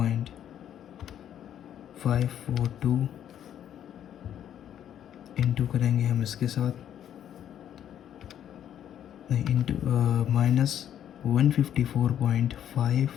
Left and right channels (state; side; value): quieter; right; 10.2 dB